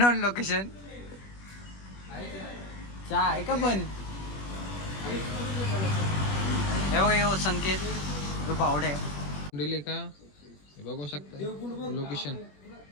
location. चहा आहे का पण? हे बघा यो संकेत तो बावडे दिले का हे बघू शकता. लोकेशन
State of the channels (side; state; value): right; late; 21 ms